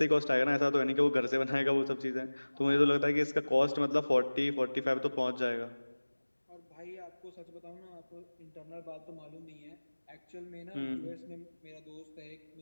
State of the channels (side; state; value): both; inverted; correlation -1.00